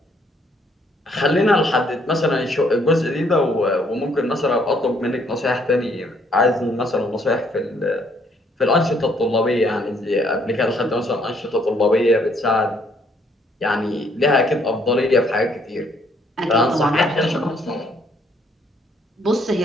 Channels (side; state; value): both; normal; correlation 0.67